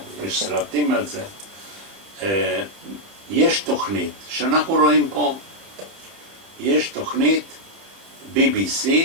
יש סרטים על זה, יש תוכנית שאנחנו רואים פה, יש תוכנית BBC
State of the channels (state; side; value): late; left; 30 ms